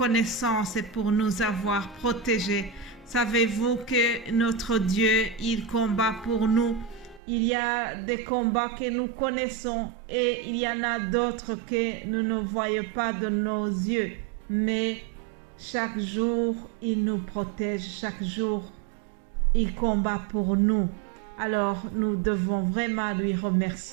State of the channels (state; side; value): drops out; left; at 7.2 s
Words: pour nous avoir protégés. Savez-vous que notre Dieu, il combat pour nous? Il y a des combats que nous connaissons et il y en a d'autres que nous ne voyons pas de nos yeux. Mais chaque jour, il nous protège. Chaque jour, il combat pour nous. Alors, nous devons vraiment lui